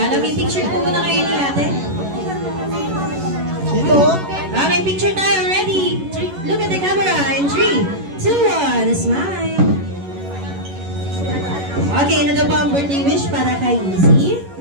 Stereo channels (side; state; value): left; late; 11 ms